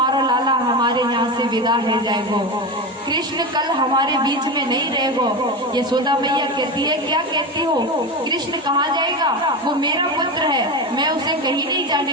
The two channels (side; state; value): both; normal; correlation 0.21